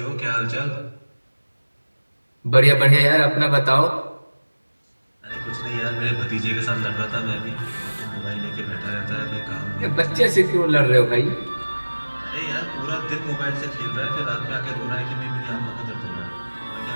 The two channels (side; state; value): both; inverted; correlation -1.00